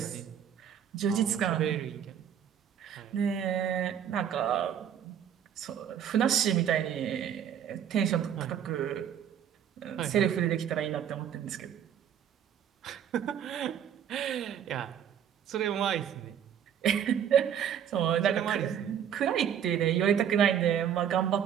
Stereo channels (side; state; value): left; quieter; 9.1 dB